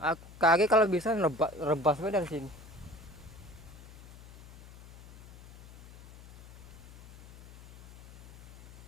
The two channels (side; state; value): left; noise; hum, 17 dB below the sound